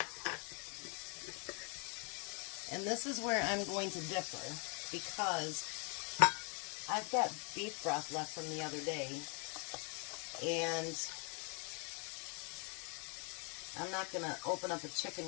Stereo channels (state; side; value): quieter; right; 36.6 dB